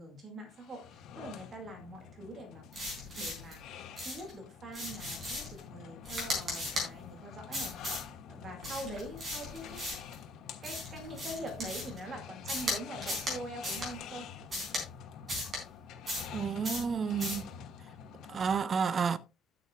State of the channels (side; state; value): both; normal; correlation 0.66